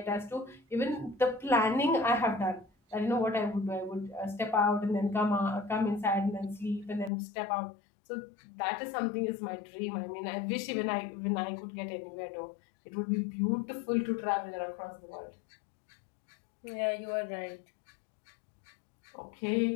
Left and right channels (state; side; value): drops out; right; at 7.1 s